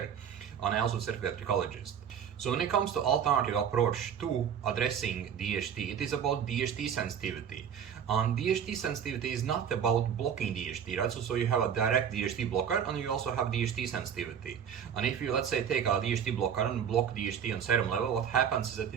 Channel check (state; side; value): quieter; left; 8.2 dB